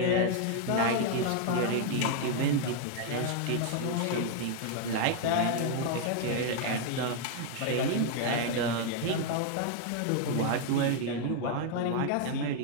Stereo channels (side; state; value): both; different; correlation 0.00